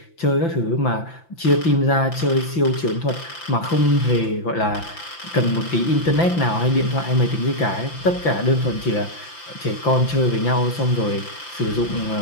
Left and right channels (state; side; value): late; right; 5.9 ms